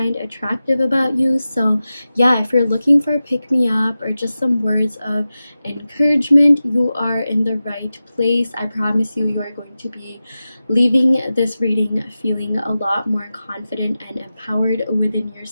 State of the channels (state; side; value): inverted; both; correlation -0.94